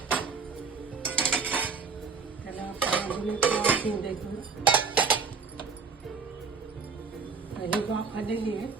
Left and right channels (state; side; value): quieter; left; 5.2 dB